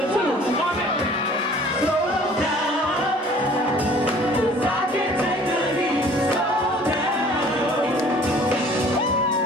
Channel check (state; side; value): normal; both; correlation 0.52